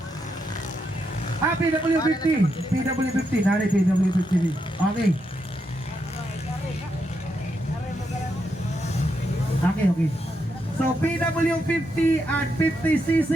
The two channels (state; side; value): normal; both; correlation 0.82